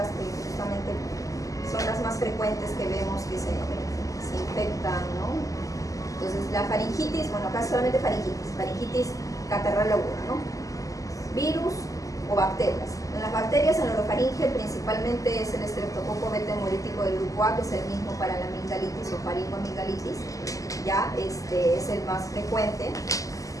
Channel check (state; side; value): late; right; 0.16 ms